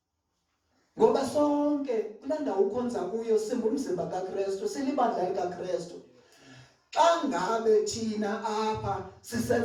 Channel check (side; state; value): both; identical; correlation 1.00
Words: Ngoba sonke kulaa ndawo ukhonza kuyo simbumzimba kaKristu, silibandla likaKristu. Xa ngabe thina apha